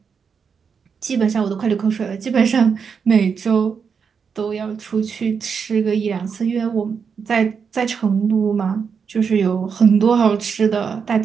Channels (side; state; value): left; quieter; 6.2 dB